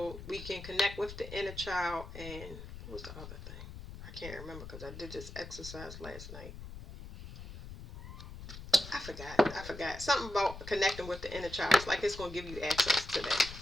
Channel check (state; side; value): noise; left; rumble, 12 dB below the sound